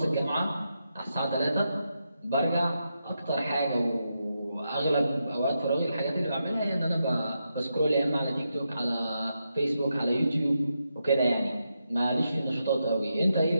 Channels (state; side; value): inverted; both; correlation -0.85